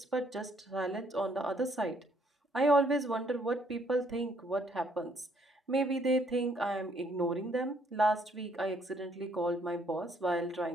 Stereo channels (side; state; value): both; normal; correlation 0.67